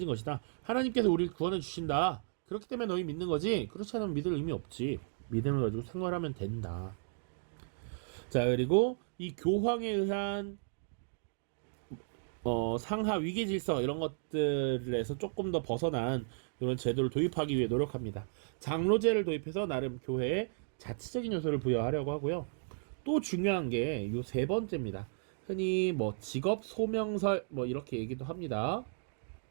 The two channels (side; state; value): left; silent; digital silence